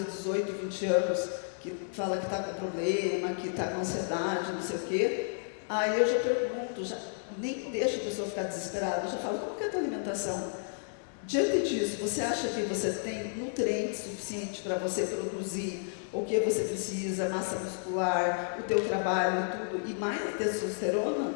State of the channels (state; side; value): silent; right; digital silence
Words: 18, 20 anos, que fala que está com problema, que está com ansiedade, não sei o quê, aí eu já pergunto, nem deixo a pessoa ficar desesperada, eu já falo, como que é a tua alimentação? Diante disso, você acha que você tem nutrientes suficientes para você produzir o que você precisa, massa muscular, o teu trabalho e tudo, e mais a testosterona?